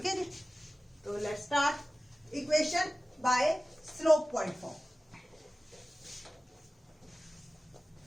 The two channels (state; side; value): normal; both; correlation 0.97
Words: है जी। तो let's start equation by slope point form.